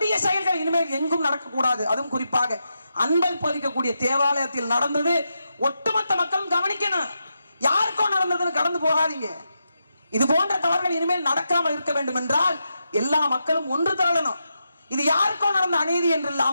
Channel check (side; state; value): both; inverted; correlation -0.86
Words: செயல்கள் இனிமேல் எங்கும் நடக்கக்கூடாது. அதுவும் குறிப்பாக அன்பை போதிக்கக்கூடிய தேவாலயத்தில் நடந்தது. ஒட்டுமொத்த மக்களும் கவனிக்கணும். யாருக்கோ நடந்ததுன்னு கடந்து போகாதீங்க. இது போன்ற தவறுகள் இனிமேல் நடக்காமல் இருக்க வேண்டும் என்றால் எல்லா மக்களும் ஒன்று திரளணும். இது யாருக்கோ நடந்த அநீதி என்று